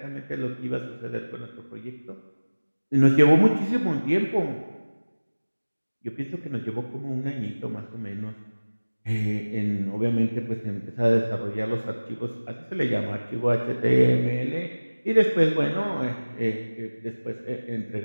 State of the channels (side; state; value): both; inverted; correlation -1.00